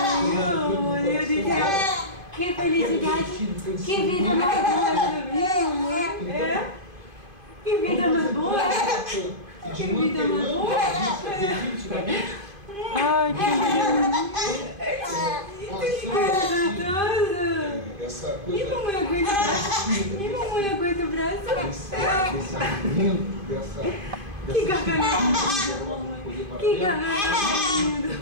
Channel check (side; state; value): left; late; 2.5 ms